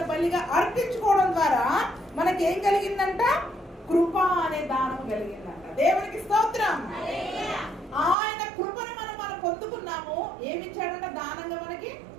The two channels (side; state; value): left; drops out; at 8.2 s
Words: బలిగా అర్పించుకోవడం ద్వారా మనకేం కలిగిందంట, కృప అనే దానం కలిగిందంట. దేవునికి స్తోత్రం. ఆయన కృపను మనం పొందుకున్నాము. ఏమిచ్చాడంట దానంగా మనకి?